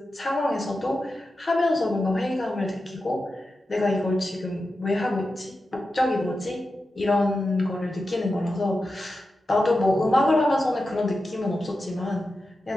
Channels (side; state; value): both; normal; correlation 0.91